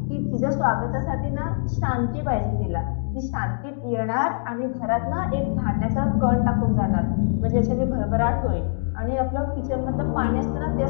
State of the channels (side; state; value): right; silent; digital silence